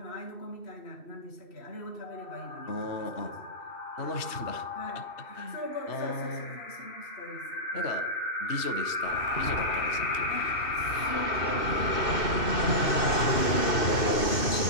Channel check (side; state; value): right; late; 2.7 ms